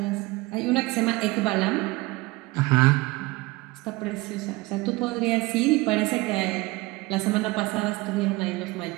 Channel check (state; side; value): quieter; left; 22.1 dB